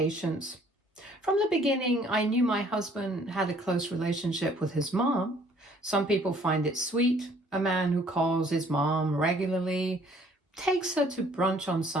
From the beginning, I knew my husband had a close relationship with his mom. Some people find it sweet, a man who calls his mom regularly, takes her to brunch on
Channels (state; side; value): normal; both; correlation 0.59